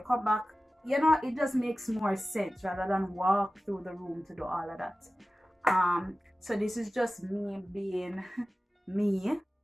back. You know, it just makes more sense rather than walk through the room to do all of that. So this is just me being me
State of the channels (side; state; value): both; normal; correlation 0.96